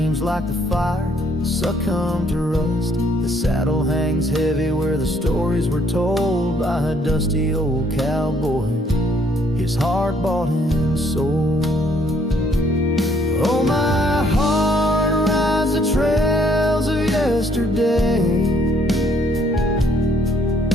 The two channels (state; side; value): normal; both; correlation 0.65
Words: like the fire succumb to rust. The saddle hangs heavy where the stories were told by a dusty old cowboy, his heart bought and sold. Oh, my heart rides the trails of yesterday,